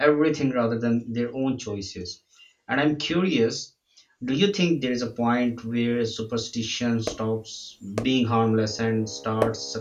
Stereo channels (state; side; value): identical; both; correlation 1.00